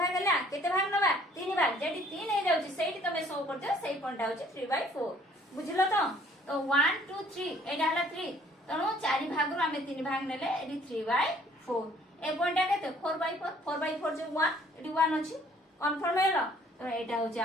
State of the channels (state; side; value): normal; both; correlation 0.59